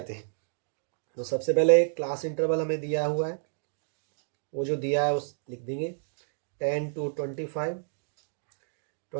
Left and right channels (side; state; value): left; silent; digital silence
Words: हैं। तो सबसे पहले क्लास इंटरवल हमें दिया हुआ है, वो जो दिया है उस लिख देंगे 10 to 25,